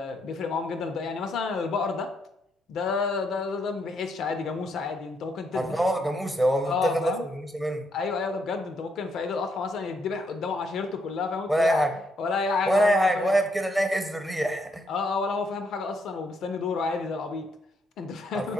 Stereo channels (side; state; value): both; normal; correlation 0.75